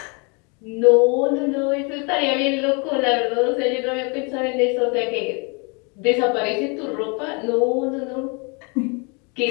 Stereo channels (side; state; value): right; quieter; 32.8 dB